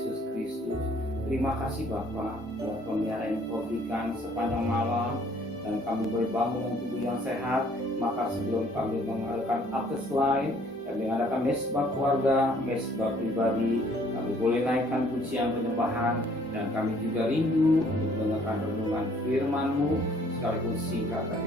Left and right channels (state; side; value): normal; both; correlation 0.60